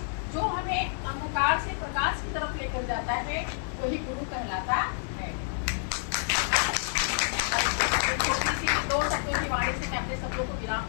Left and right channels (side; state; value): right; silent; digital silence